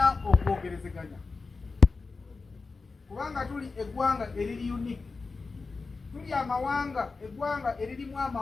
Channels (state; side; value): quieter; right; 4.2 dB